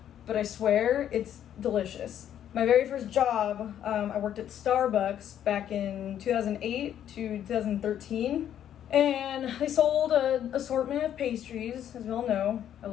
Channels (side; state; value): right; quieter; 10.3 dB